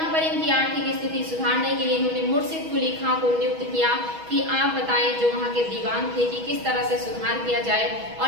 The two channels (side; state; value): left; late; 6.2 ms